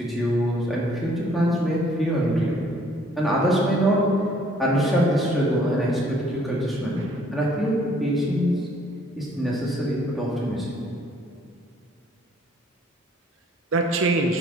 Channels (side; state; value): both; normal; correlation 0.61